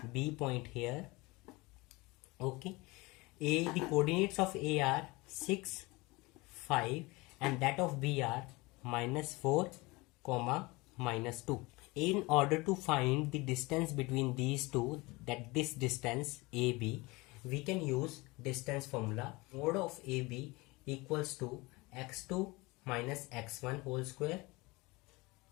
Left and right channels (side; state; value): right; quieter; 23.6 dB